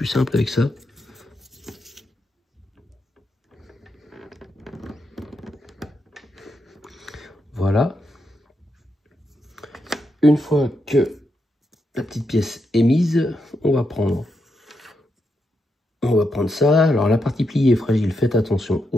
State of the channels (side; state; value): both; normal; correlation 0.83